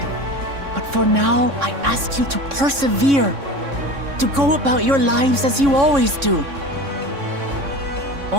But for now, I ask you to persevere. To go about your lives as you always do.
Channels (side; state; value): left; late; 3.6 ms